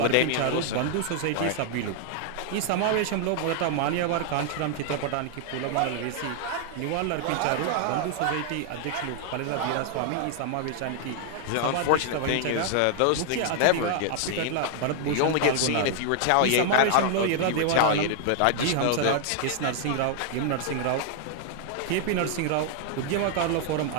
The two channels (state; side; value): different; both; correlation 0.00